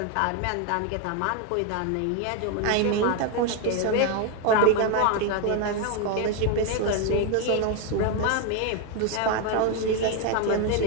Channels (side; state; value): both; different; correlation 0.01